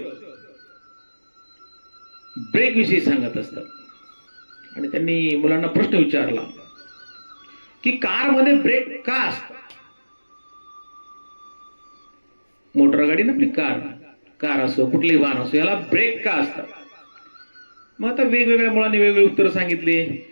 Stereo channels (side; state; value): both; inverted; correlation -1.00